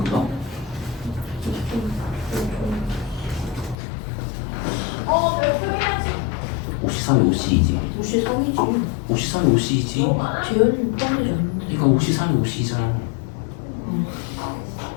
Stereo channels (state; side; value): drops out; right; at 3.8 s